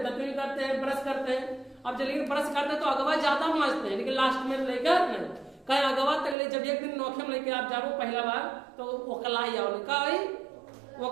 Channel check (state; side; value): drops out; left; at 6.4 s